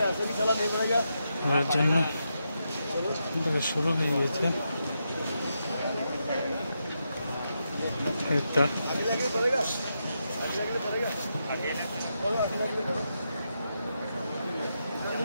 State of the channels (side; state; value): both; inverted; correlation -0.85